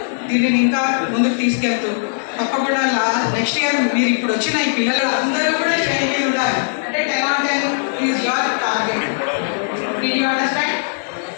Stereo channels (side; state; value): right; silent; digital silence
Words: దీనిని ఇంకా ముందుకు తీసుకెళ్తూ తప్పకుండా నెక్స్ట్ ఇయర్ మీరు ఇప్పుడు వచ్చిన ఈ పిల్లలు అందరూ కూడా ట్రైనింగ్ ఉండాలి. అంటే 10 is your target. You understand?